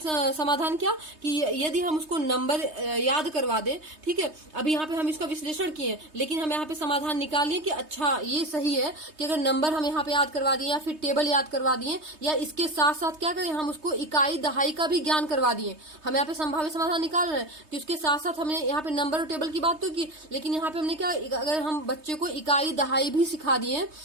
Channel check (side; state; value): left; late; 3.2 ms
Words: समाधान क्या, कि यदि हम उसको नंबर याद करवा दें, ठीक है। अभी यहाँ पे हम इसका विश्लेषण किए, लेकिन हम यहाँ पे समाधान निकाल लिए कि अच्छा ये सही है कि अगर नंबर हम यहाँ पे याद करवा दिए या फिर टेबल याद करवा दिए, या इसके साथ साथ क्या करें, हम उसको इकाई दहाई का भी ज्ञान करवा दिए। हम यहाँ पे संभावित समाधान निकाल रहे हैं कि उसके साथ साथ हमने यहाँ पे नंबर और टेबल की बात तो की, लेकिन यहाँ पे हमने क्या, अगर हम बच्चे को इकाई दहाई भी सिखा दिए,